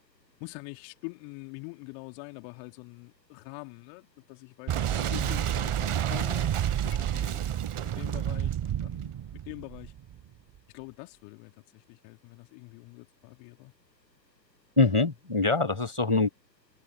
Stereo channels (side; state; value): left; late; 1.4 ms